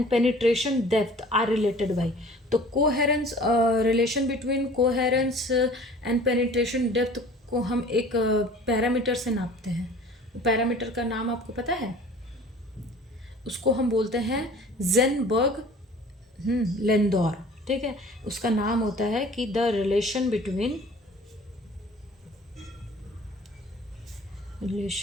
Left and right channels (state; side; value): normal; both; correlation 0.47